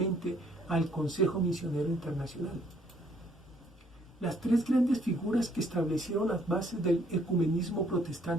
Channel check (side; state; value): both; normal; correlation 0.65